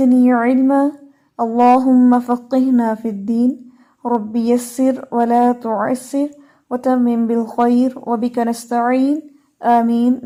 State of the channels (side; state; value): both; identical; correlation 1.00